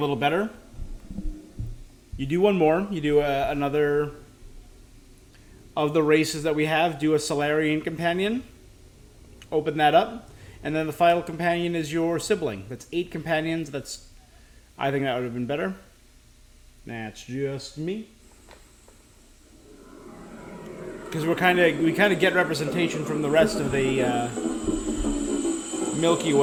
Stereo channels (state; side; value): identical; both; correlation 1.00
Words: better. You do one more. You do another of the races that we have. Do a Solarian companion. Open that up. And then the final companion is your sibling. That's 8 companions. I think that would have been better. That's just me. Because we kind of get representation from the rest of the Milky